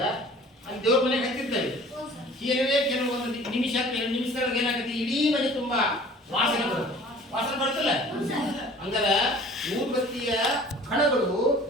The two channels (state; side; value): normal; both; correlation 0.47